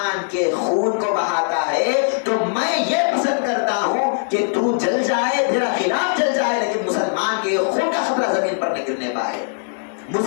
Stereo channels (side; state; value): right; silent; digital silence